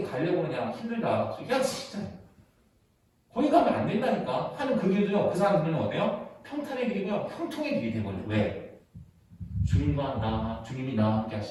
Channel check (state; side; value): identical; both; correlation 1.00